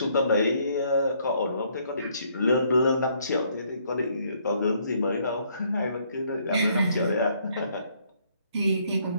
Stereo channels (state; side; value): inverted; both; correlation -0.68